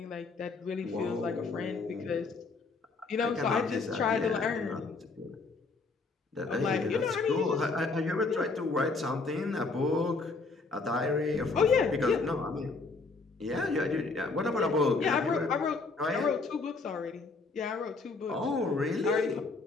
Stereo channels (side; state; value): right; quieter; 3.9 dB